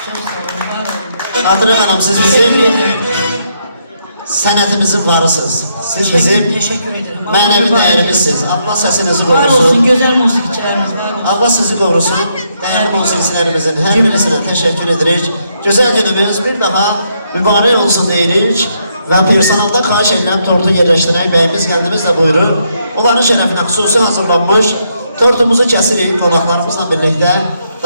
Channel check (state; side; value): inverted; both; correlation -0.76